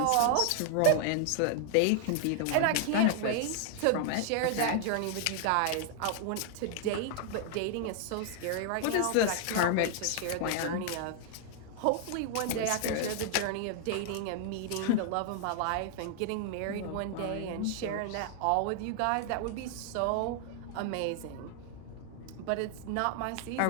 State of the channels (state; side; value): different; both; correlation 0.00